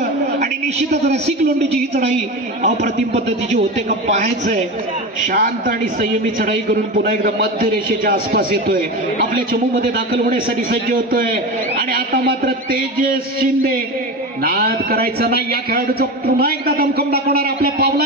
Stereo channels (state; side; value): normal; both; correlation 0.24